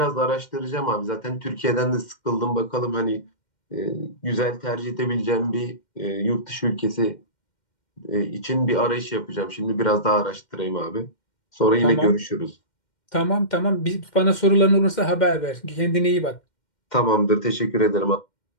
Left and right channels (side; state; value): right; late; 2.1 ms